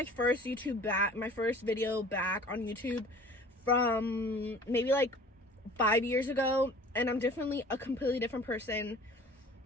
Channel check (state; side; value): normal; both; correlation 0.45